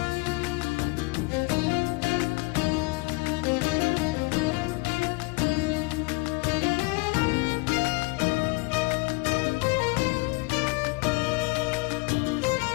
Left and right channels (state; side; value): quieter; right; 27.8 dB